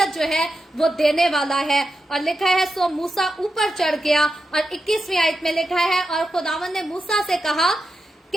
जो है वो देने वाला है। और लिखा है सो मूसा ऊपर चढ़ गया, और 21वीं आयत में लिखा है और खुदावन ने मूसा से कहा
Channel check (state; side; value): normal; both; correlation 0.88